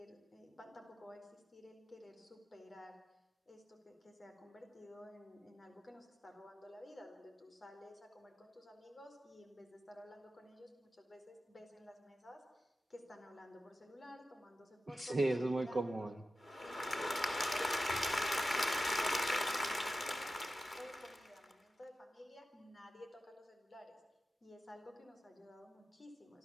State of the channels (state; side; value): normal; both; correlation 0.93